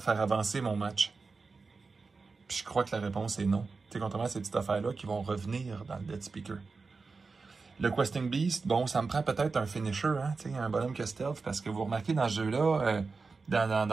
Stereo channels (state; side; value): quieter; left; 4.3 dB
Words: avancer mon match? Puis je crois que la réponse est non. Tu sais, contrairement à ces petites affaires-là qui vont revenir dans le Dead Speaker. Le Questing Beast, bon, ça me prend peut-être un finisher, hein, tu sais, un bonhomme que stealth, parce que vous remarquez dans ce jeu-là,